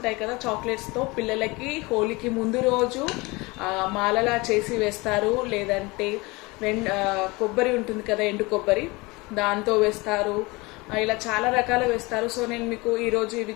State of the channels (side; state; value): right; quieter; 24.2 dB